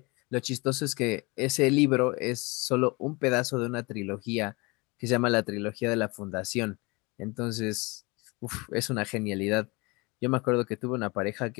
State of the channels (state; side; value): quieter; right; 26.2 dB